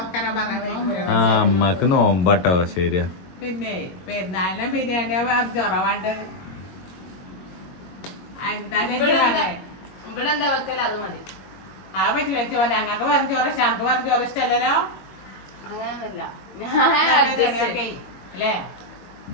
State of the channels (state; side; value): late; right; 21 ms